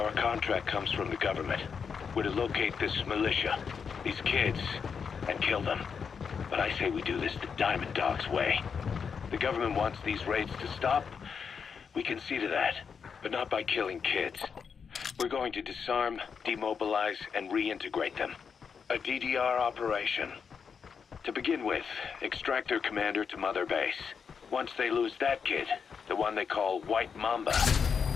contract comes from the government. We're to locate this militia, these kids, and kill them. But I say we do this the Diamond Dog's way. The government wants these raids to stop. We can see to that, but not by killing kids. We're going to disarm, demobilize, and reintegrate them. A DDR operation. To begin with, extract their commander to Mother Base. Once they lose that kid, the one they call White Mamba,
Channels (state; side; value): quieter; right; 6.3 dB